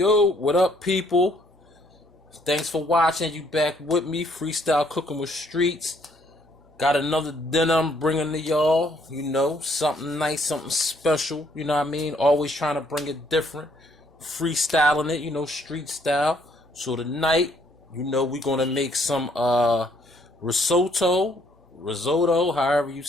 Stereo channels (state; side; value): normal; both; correlation 0.67